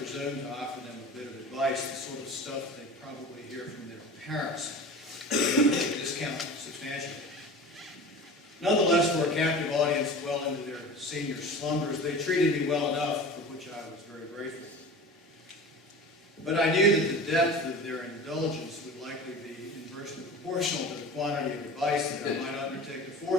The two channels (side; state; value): both; normal; correlation 0.35